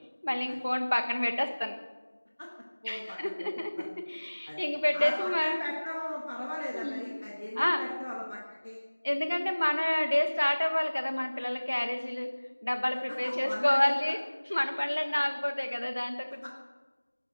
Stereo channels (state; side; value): inverted; both; correlation -1.00